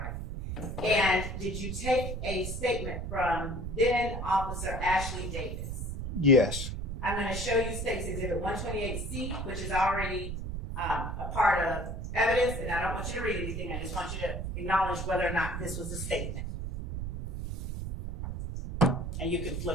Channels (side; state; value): right; noise; rumble, 4 dB below the sound